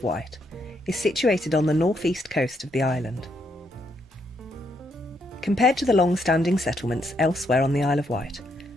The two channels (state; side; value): normal; both; correlation 0.76